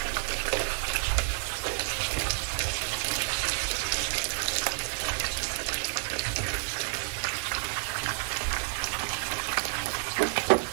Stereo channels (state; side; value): silent; left; digital silence